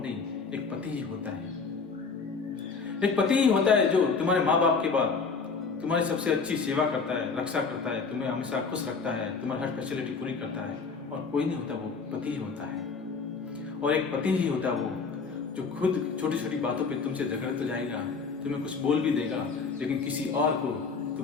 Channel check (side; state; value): right; quieter; 4.9 dB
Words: एक पति ही होता है। एक पति ही होता है जो तुम्हारे माँ बाप के बाद तुम्हारी सबसे अच्छी सेवा करता है, रक्षा करता है, तुम्हें हमेशा खुश रखता है, तुम्हारी हर फैसिलिटी पूरी करता है, और कोई नहीं होता, वो पति ही होता है। और एक पति ही होता है वो जो खुद छोटी छोटी बातों पे तुमसे झगड़ तो जाएगा, तुम्हें कुछ बोल भी देगा, लेकिन किसी और को